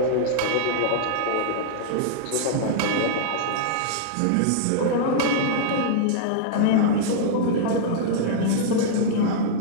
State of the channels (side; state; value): both; different; correlation -0.02